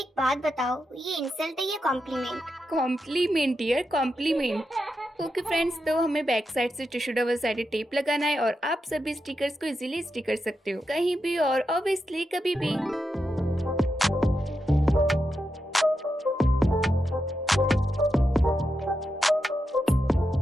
बात बताओ, ये इंसल्ट है या compliment? Compliment dear, compliment. Okay friends, तो हमें बैक साइड से टिश्यू डबल साइडेड टेप लगाना है और आप सभी स्टिकर्स को इजीली स्टिक कर सकते हो कहीं भी और ऑब्वियसली कभी भी।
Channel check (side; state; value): both; normal; correlation 0.87